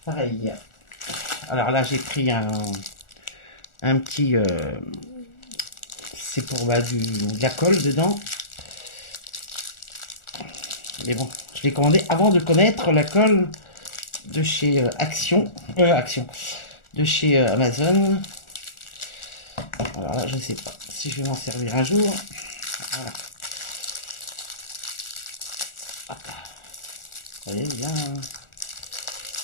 Pareil. Alors là, j'ai pris un petit... c'est pour de la colle dedans. Mais bon, je l'ai commandé avant de connaître la colle de chez Action. De chez Amazon. Alors là, je ne sais pas si je vais m'en servir un jour. Voilà. Ah. Vous voyez bien.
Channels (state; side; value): late; right; 1.4 ms